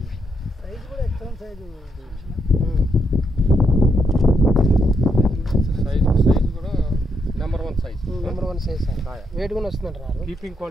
సైజ్ కూడా ఎక్సలెంట్ సైజు కూడా నెంబర్ 1 సైజ్. సార్. వెయిట్ కూడా వస్తుందంటారు. కీపింగ్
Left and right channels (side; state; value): both; normal; correlation 0.78